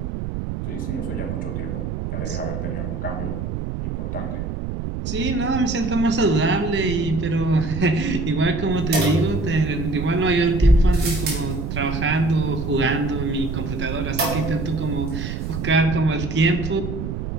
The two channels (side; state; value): right; noise; rumble, 4 dB below the sound